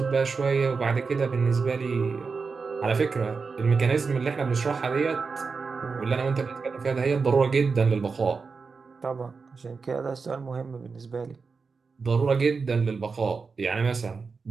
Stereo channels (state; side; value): quieter; left; 4.8 dB